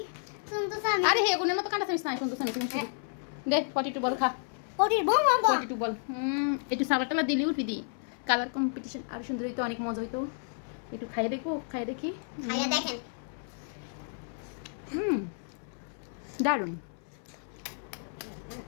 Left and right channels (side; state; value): right; silent; 57 dB below the other